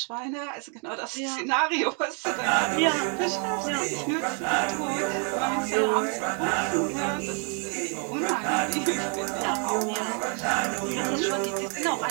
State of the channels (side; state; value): left; quieter; 39.4 dB